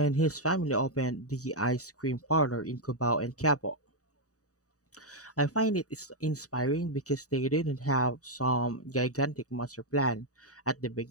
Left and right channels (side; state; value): right; late; 0.66 ms